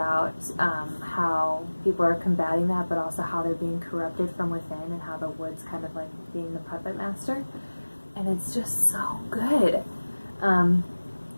how people are combating that, but also how they're being corrupted from within, and how the wood's kind of like being the puppet master, and it's just so good.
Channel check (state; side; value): inverted; both; correlation -1.00